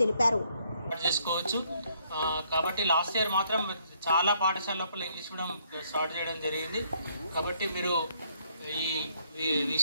తెలిపారు. కాబట్టి లాస్ట్ ఇయర్ మాత్రం చాలా పాఠశాల లోపల ఇంగ్లీష్ మీడియం స్టార్ట్ చేయడం జరిగింది. కాబట్టి మీరు ఈ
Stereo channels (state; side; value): inverted; both; correlation -0.68